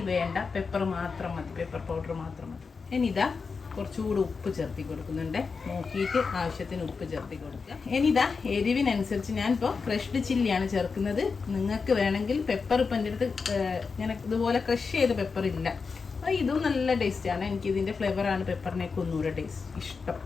വേണ്ട, പെപ്പർ മാത്രം മതി, പെപ്പർ പൗഡർ മാത്രം മതി. ഇനി ഇതാ കുറച്ചുകൂടി ഉപ്പ് ചേർത്തി കൊടുക്കുന്നുണ്ട്, നോക്കിയിട്ട് ആവശ്യത്തിന് ഉപ്പ് ചേർത്തി കൊടുക്കുക. ഇനി ഇതാ എരിവിനനുസരിച്ച് ഞാനിപ്പോൾ ക്രഷ്ഡ് ചില്ലിയാണ് ചേർക്കുന്നത്. നിങ്ങൾക്ക് വേണമെങ്കിൽ പെപ്പർ ഇപ്പം എൻ്റെ അടുത്ത് ഇങ്ങനെ ഇതുപോലെ ക്രഷ് ചെയ്ത പെപ്പർ ഇല്ല, അപ്പോൾ ഇതും നല്ല ടേസ്റ്റാണ്. എനിക്കിതിൻ്റെ ഫ്ലേവറാണ് പെപ്പറിനേക്ക് ഒന്നുകൂടെ ടേസ്റ്റ് ഇഷ്ടം.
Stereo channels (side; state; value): right; quieter; 5.0 dB